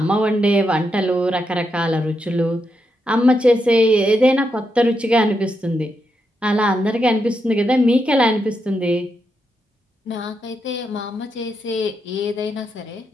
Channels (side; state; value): both; normal; correlation 0.83